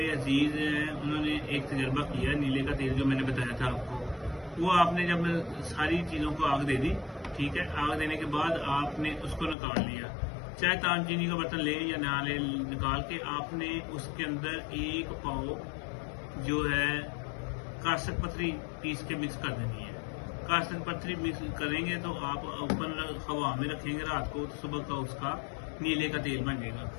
अजीज हैं, उन्होंने एक तजर्बा किया। नीले का तेल जो मैंने बताया था आपको, वो आपने जब सारी चीज़ों को आग दे दी, ठीक है, आग देने के बाद आपने उसको निकाल लिया, चाहे ताम चीनी का बर्तन ले या ना ले, निकाल के आपने उसके अंदर एक पाव जो है कासक पत्थरी पीस के मिक्स कर देनी है। कासक पत्थरी मिक्स करेंगे तो आप ओपन हवा में रखेंगे रात को, तो सुबह का उसका नीले का तेल बन जाएगा।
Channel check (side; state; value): right; drops out; at 9.6 s